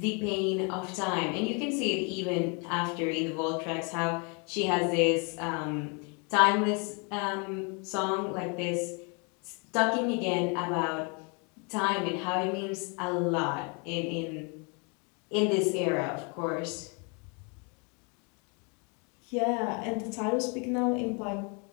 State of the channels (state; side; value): quieter; right; 34.1 dB